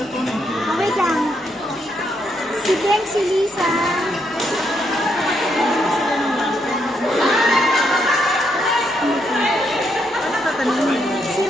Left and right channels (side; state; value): both; normal; correlation 0.77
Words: Wait lang. Si Glenn, si Lisa. Si